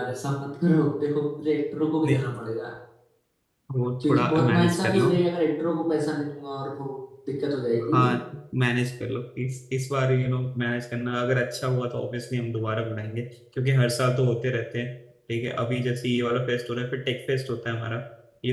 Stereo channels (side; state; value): both; identical; correlation 1.00